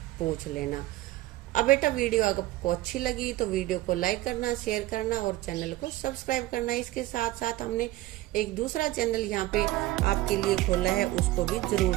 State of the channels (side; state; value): left; quieter; 17.0 dB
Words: पूछ लेना। अब बेटा वीडियो अगर आपको अच्छी लगी तो वीडियो को लाइक करना, शेयर करना और चैनल को सब्सक्राइब करना। इसके साथ साथ हमने एक दूसरा चैनल यहाँ पे आपके लिए खोला है, उसको भी जरूर